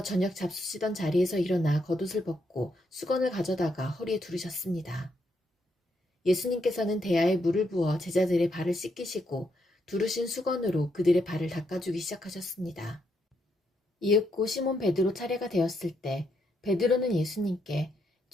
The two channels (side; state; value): both; normal; correlation 0.78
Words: 저녁 잡수시던 자리에서 일어나 겉옷을 벗고 수건을 가져다가 허리에 두르셨습니다. 예수님께서는 대야에 물을 부어 제자들의 발을 씻기시고 두르신 수건으로 그들의 발을 닦아주기 시작하셨습니다. 이윽고 시몬 베드로 차례가 되었을 때 베드로는 예수님께